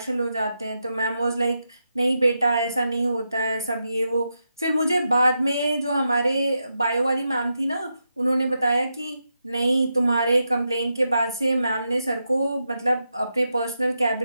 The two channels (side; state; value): both; inverted; correlation -0.86